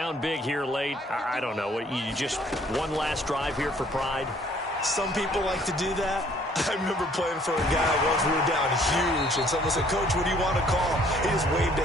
big here late. I don't know. You just one last drive here for pride? Some people like to do that. I remember playing for a guy once we were down huge, and someone said, "Coach, what do you want to call?" He just waved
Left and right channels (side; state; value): both; normal; correlation 0.60